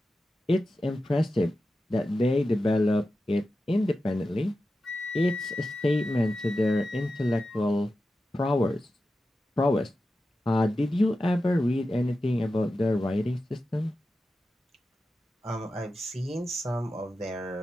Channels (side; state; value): both; normal; correlation 0.92